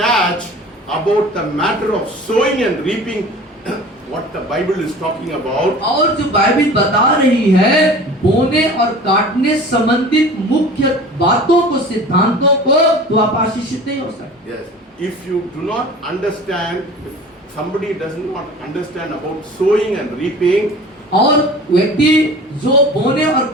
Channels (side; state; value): both; normal; correlation 0.41